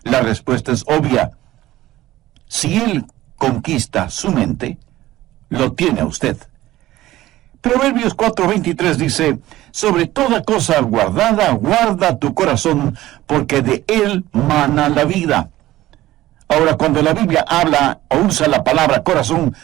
La respuesta es obvia. Si él conquista su mente, lo tiene a usted. Proverbios 4:23 dice: sobre toda cosa guardada, guarda tu corazón, porque de él mana la vida. Ahora, cuando la Biblia habla o usa la palabra corazón,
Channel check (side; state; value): left; quieter; 15.7 dB